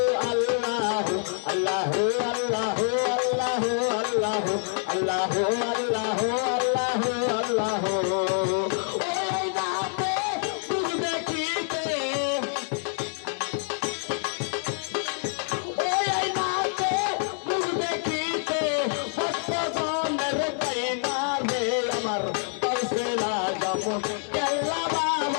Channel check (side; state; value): right; silent; 59 dB below the other